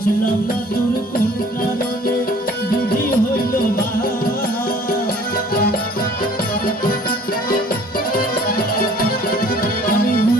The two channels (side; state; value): both; normal; correlation 0.53